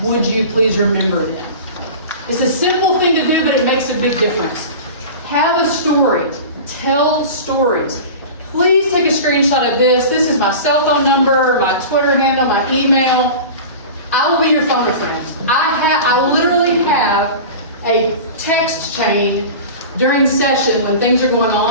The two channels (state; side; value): inverted; both; correlation -0.33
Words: Would you please remember them? It's a simple thing to do, but it makes a big difference. Have a story. Tell stories. Please take a screenshot of this. This is my cell phone number, my Twitter handle, my email. I will be your phone a friend. I literally have a text chain during session when things are going